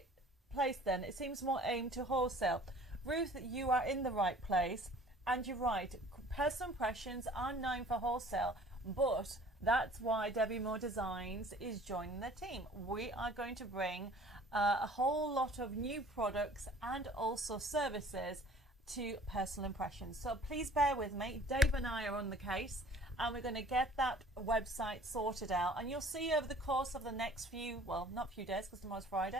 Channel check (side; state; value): both; normal; correlation 0.50